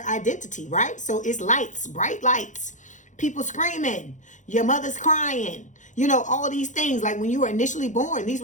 identity, right? So it's lights, bright lights, people screaming, your mother's crying, you know, all these things. Like when you were initially born, these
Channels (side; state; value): right; late; 0.36 ms